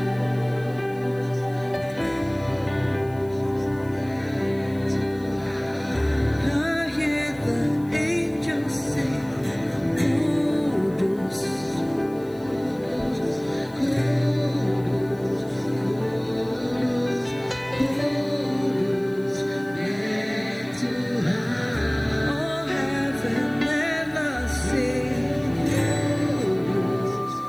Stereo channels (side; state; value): left; noise; hiss, 26 dB below the sound